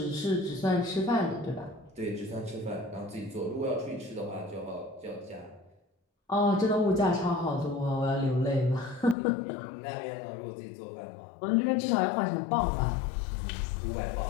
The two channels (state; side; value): drops out; right; at 9.2 s